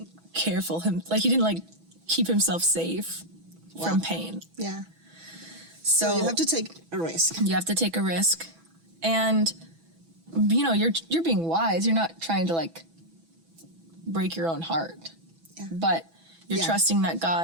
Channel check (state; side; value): late; left; 6.1 ms